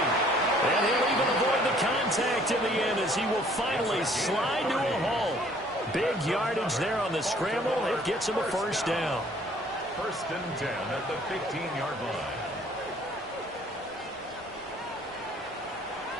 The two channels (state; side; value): normal; both; correlation 0.58